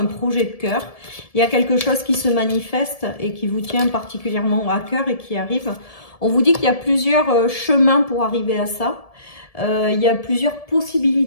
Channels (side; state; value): right; late; 1.7 ms